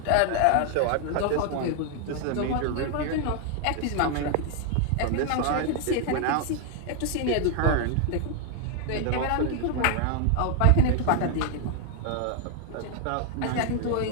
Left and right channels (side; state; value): both; different; correlation 0.00